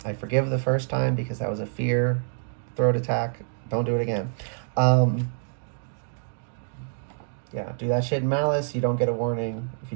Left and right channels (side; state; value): left; silent; digital silence